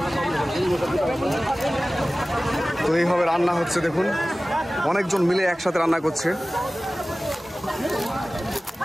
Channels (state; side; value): normal; both; correlation 0.97